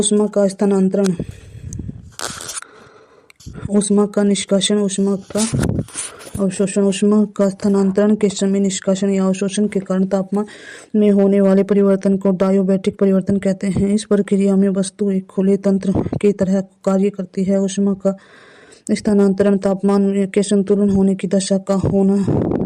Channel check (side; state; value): both; identical; correlation 1.00